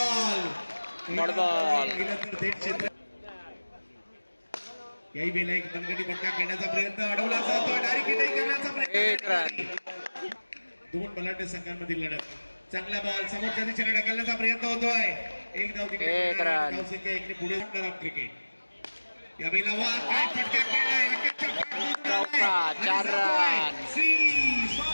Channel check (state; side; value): inverted; both; correlation -1.00